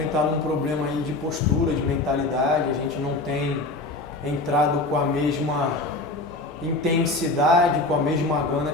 um problema aí de postura, de mentalidade, a gente não tem entrado com a mesma intensidade, com a mesma gana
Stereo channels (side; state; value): right; quieter; 3.0 dB